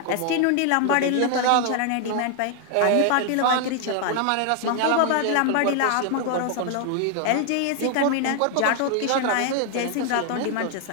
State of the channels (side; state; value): both; different; correlation 0.00